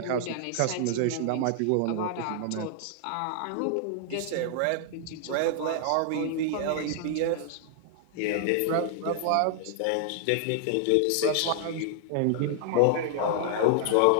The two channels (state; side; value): different; both; correlation 0.00